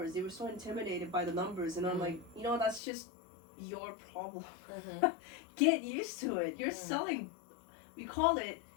They were so intimidated by the numbers, and I'm like, you know, that's just your problem. Get used to it. You're selling. We call it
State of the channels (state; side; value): drops out; right; at 2.8 s